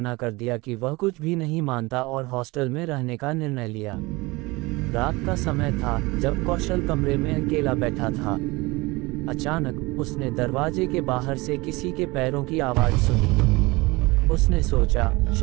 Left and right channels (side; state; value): left; quieter; 23.1 dB